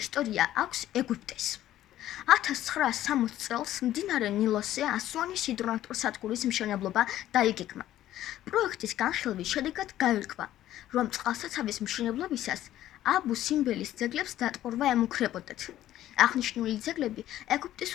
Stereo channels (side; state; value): right; quieter; 13.2 dB